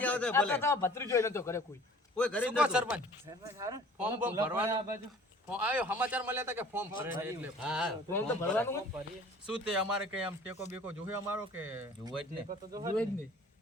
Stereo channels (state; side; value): normal; both; correlation 0.49